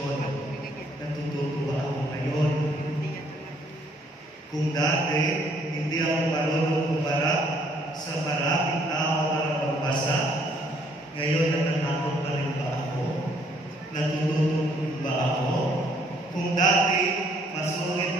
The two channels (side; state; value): both; normal; correlation 0.65